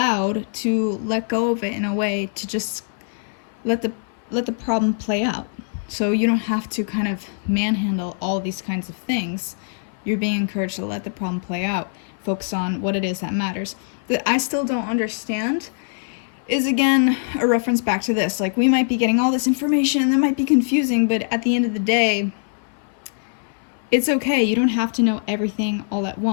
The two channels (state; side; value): silent; right; 60 dB below the other